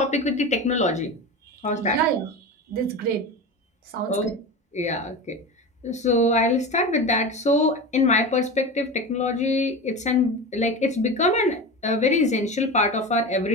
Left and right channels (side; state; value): both; normal; correlation 0.27